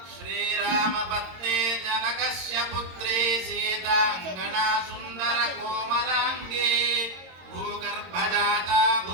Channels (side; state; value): left; late; 22 ms